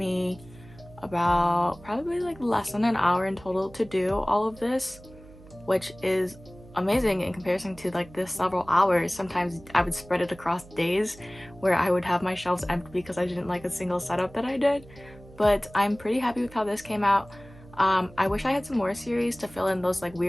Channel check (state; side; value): noise; right; hum, 21 dB below the sound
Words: about probably like less than an hour in total to do all of this, which is amazing in comparison to like this several hours. Sometimes I would spread it across days where I would have my shelves empty because I didn't like a single setup that I did. But I'm pretty happy with how this came out. I wish I had some more series to fill in those like